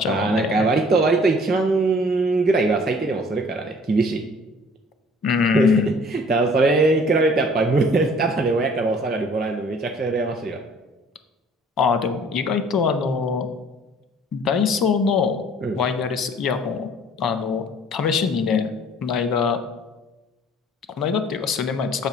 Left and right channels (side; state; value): both; normal; correlation 0.53